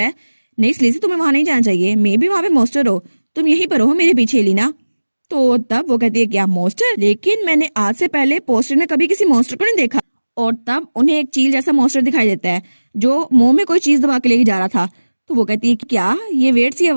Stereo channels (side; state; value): both; inverted; correlation -1.00